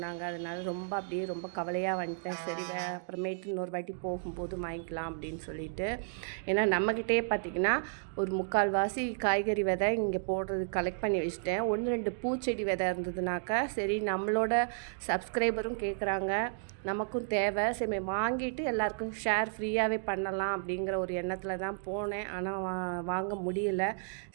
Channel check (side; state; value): left; silent; digital silence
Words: அதனால ரொம்ப கவலையாக வந்துட்டேன். சரி அப்புறமேட்டு இன்னொரு வாட்டி போகும்போது வாங்கிக்கலாம் அப்படின்னு சொல்லிட்டு. ஏன்னா நம்மக்கிட்டே பார்த்திங்கன்னா ஒரு 3/4 வாசி காய்கறி விதை இங்கே போடுறது கலெக்ட் பண்ணி வச்சுட்டேன். 1 2 பூச்செடி விதை இருந்ததுனாக்கா சரி நம்மளோட சப்ஸ்கிரைபரும் கேட்குறாங்க, நமக்கும் தேவை, சரி வாங்கிட்டு எல்லாருக்கும் ஷேர் ஃப்ரீயாகவே பண்ணலாம் அப்படிங்கிற ஒரு எண்ணத்தில் தான் போனேன். ஆனால் வாங்க முடியல.